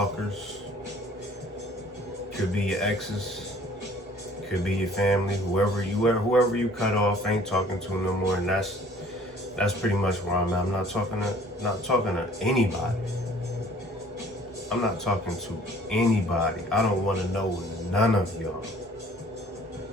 Could be your exes, could be your family, whoever you cut off, ain't talking to no more, and that's pretty much where I'm at. I'm not talking to anybody. I'm not talking to anybody. I don't want to know none of y'all.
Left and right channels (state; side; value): normal; both; correlation 0.54